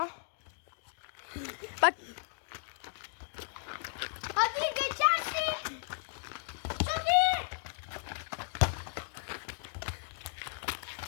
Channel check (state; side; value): silent; right; digital silence